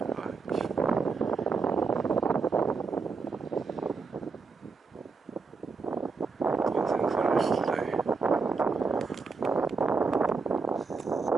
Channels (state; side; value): quieter; left; 4.6 dB